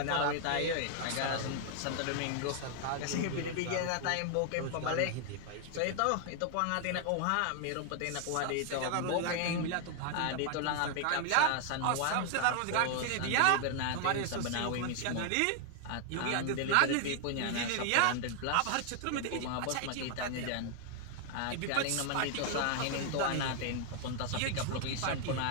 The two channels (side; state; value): both; different; correlation 0.00